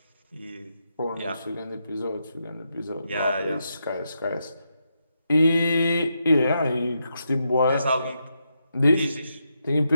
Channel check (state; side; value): inverted; both; correlation -0.83